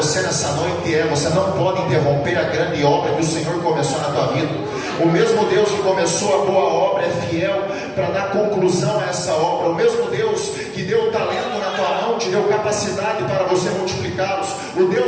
nessa noite é: você não pode interromper a grande obra que o Senhor começou na tua vida. O mesmo Deus que começou a boa obra é fiel para dar conclusão a essa obra. O mesmo Deus que deu o talento na tua mão te deu capacidade para você multiplicá-los. O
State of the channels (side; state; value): both; identical; correlation 1.00